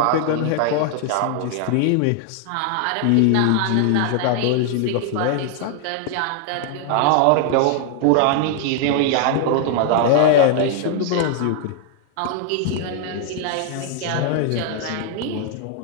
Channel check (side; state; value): both; different; correlation 0.00